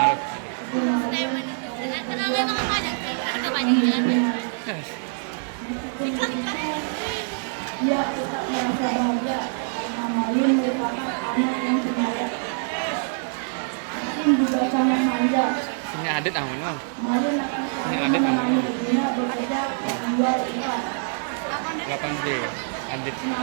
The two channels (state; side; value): silent; left; 60 dB below the other